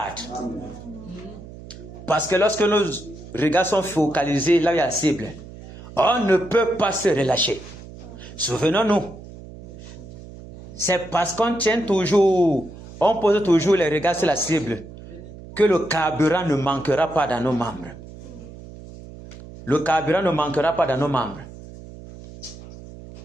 Amen. Parce que lorsque nos regards sont focalisés là où il y a la cible, on ne peut pas se relâcher. Souvenons-nous, c'est parce qu'on tient toujours, on pose toujours les regards sur la cible, que le carburant ne manquera pas dans nos membres. Le carburant ne manquera pas dans nos membres.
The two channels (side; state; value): right; noise; hum, 16 dB below the sound